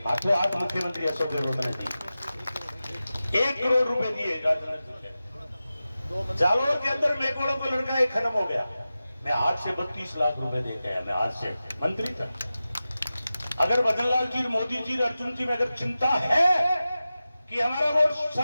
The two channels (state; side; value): inverted; both; correlation -0.94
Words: हाथों हाथ मुख्यमंत्री अशोक गहलोत ने दी। 1 करोड़ रुपए दिए। जालोर के अंदर मेकोड़ों को लड़का एक खत्म हो गया, मैं आज से 32 लाख रुपए दे के आया, मैं आज से मंत्री था। अगर भजनलाल जी, मोदी जी, अर्जुन जी में अगर चिंता है कि हमारा वोट